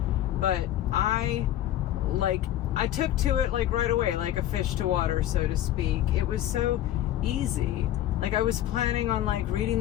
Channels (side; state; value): right; quieter; 12.7 dB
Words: But I took to it like right away, like a fish to water, so to speak. It was so easy. Like I was planning on like reading